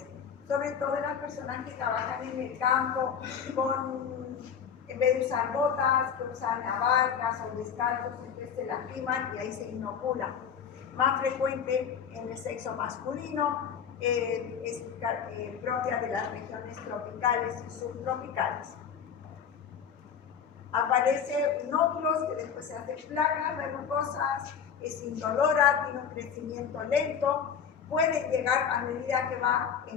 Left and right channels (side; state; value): right; quieter; 7.4 dB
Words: sobre todo en las personas que trabajan en el campo en vez de usar botas, que usan abarcas o descalzos, entonces se lastiman y ahí se inoculan. Más frecuente en el sexo masculino, es propia de las regiones tropicales y subtropicales. Aparecen nódulos que después se hacen placas verrucosas, es indolora, tiene un crecimiento lento, puede llegar a medida que va